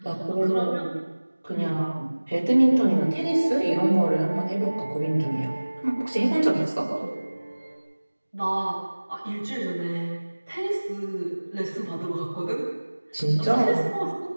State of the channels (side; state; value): both; inverted; correlation -1.00